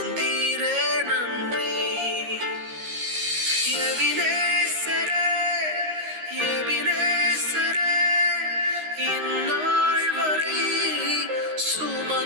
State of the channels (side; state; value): left; late; 13 ms